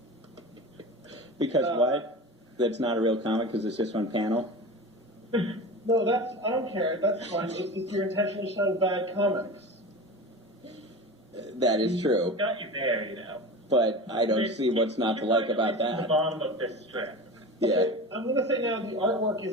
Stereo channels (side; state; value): both; normal; correlation 0.31